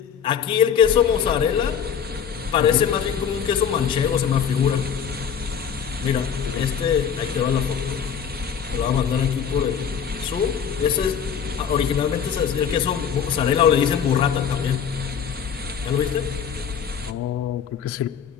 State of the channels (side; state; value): right; quieter; 7.6 dB